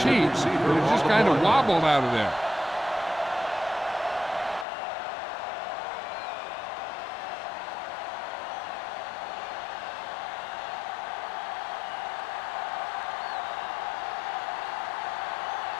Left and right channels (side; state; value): right; drops out; at 4.7 s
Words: heat that it just kind of wobbled out of there.